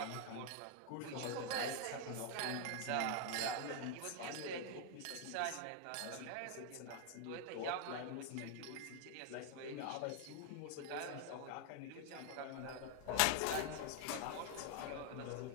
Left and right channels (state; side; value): different; both; correlation 0.00